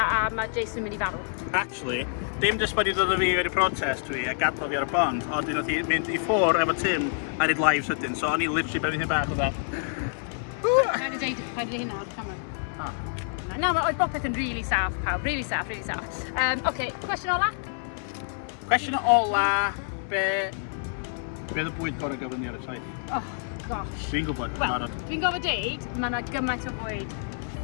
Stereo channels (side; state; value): right; silent; 60 dB below the other